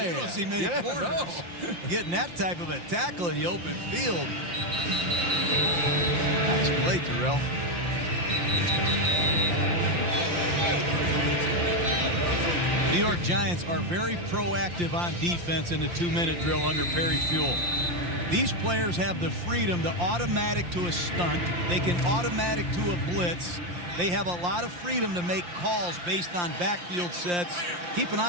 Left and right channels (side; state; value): left; late; 5.7 ms